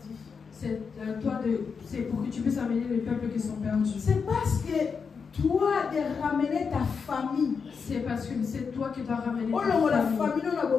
C'est pour que tu puisses amener les peuples qui sont perdus. C'est parce que toi de ramener ta famille. C'est parce que c'est toi qui dois ramener ta famille.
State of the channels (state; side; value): quieter; right; 5.7 dB